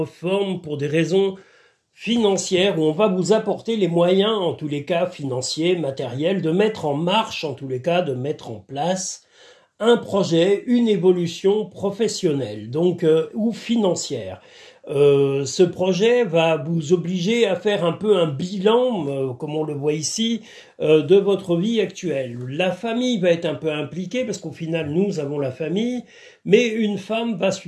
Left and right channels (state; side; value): identical; both; correlation 1.00